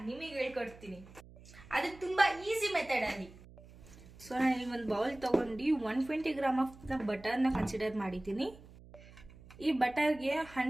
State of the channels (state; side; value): noise; right; hum, 20 dB below the sound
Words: ನಿಮಗೆ ಹೇಳ್ಕೊಡ್ತೀನಿ. ಅದು ತುಂಬಾ ಈಸಿ ಮೆಥಡ್ ಅಲ್ಲಿ. ಸೊ ನಾನು ಇಲ್ಲಿ ಒಂದು ಬೌಲ್ ತಗೊಂಡು 120 ಗ್ರಾಮ್ ಆಫ್ ಬಟರ್ನ ಕನ್ಸಿಡರ್ ಮಾಡಿದ್ದೀನಿ. ಈ ಬಟರ್ಗೆ